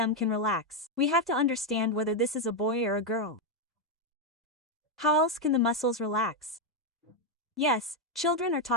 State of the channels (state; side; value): normal; both; correlation 0.04